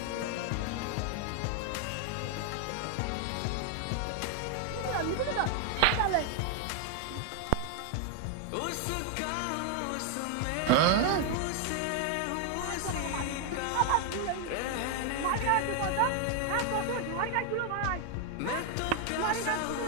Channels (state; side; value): different; both; correlation 0.00